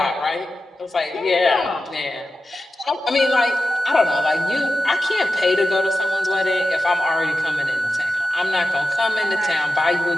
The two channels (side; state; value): both; normal; correlation 0.93